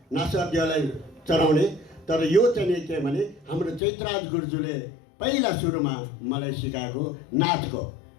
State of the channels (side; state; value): right; drops out; at 3.8 s